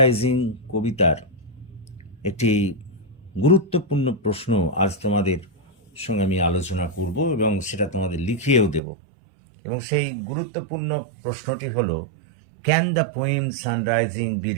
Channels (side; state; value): left; drops out; at 8.8 s